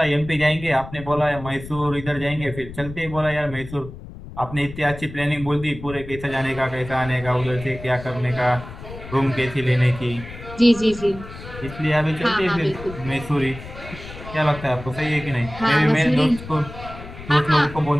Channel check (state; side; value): noise; left; rumble, 14 dB below the sound